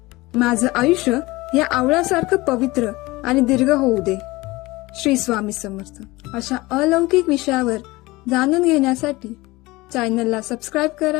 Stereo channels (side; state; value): right; quieter; 21.0 dB